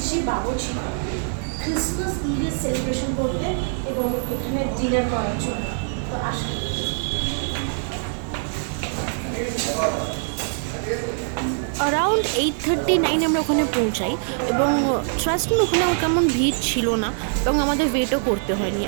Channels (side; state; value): left; silent; 63 dB below the other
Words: বাবুর্চি ক্রিসমাস ইভের সেলিব্রেশন করতে এবং এখানে ডিনার করার জন্য। তো আসুন। অ্যারাউন্ড 8:39 আমরা ওখানে পৌঁছাই এবং ট্রাস্ট মি ওখানে কেমন ভিড় ছিল না এবং আমাদের ওয়েটও করতে হয়নি।